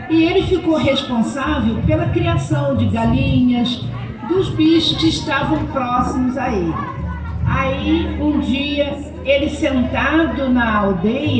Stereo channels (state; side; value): identical; both; correlation 1.00